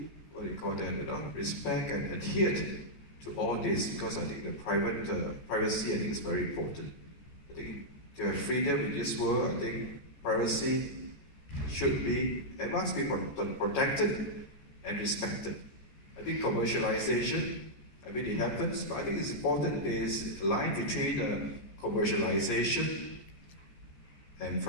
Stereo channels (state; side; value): late; right; 14 ms